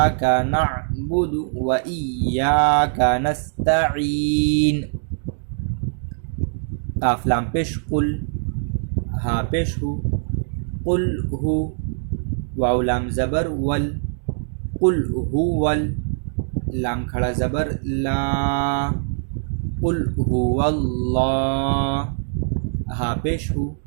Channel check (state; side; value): silent; left; digital silence